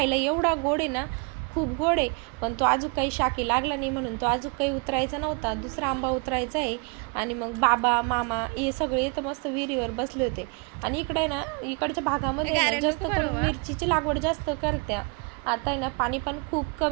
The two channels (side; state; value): left; quieter; 32.6 dB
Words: एवढा गोड आहे ना, खूप गोड आहे. पण तो अजून काही शाकी लागला नाही म्हणून तो अजून काही उतरायचा नव्हता. दुसरा आंबा उतरायचा आहे. आणि मग बाबा मामा हे सगळे इथं मस्त विहिरीवर बसले होते. आणि इकडे ना इकडच्या भागामध्ये जास्त करून मिरचीची लागवड जास्त करत्या. आता आहे ना पाणी पण खूप